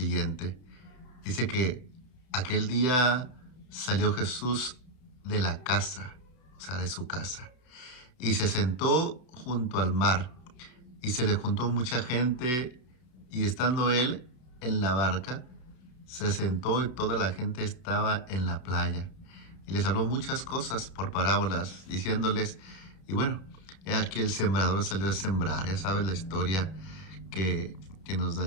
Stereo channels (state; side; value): late; right; 32 ms